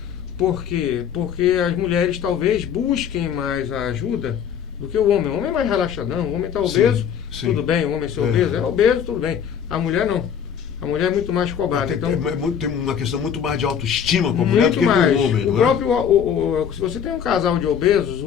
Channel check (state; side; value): quieter; right; 8.3 dB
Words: Por quê? Porque as mulheres talvez busquem mais a ajuda do que o homem. O homem é mais relaxadão, o homem está obeso, sim. Tudo bem, o homem ser obeso, é obeso, tudo bem. A mulher não. A mulher é muito mais cobrada. Tem uma questão muito mais de autoestima com a mulher do que com o homem. Se você tem um casal de obesos,